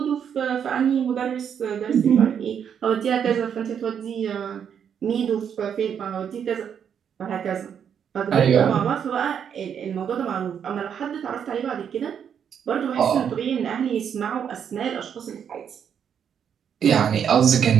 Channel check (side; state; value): left; quieter; 8.1 dB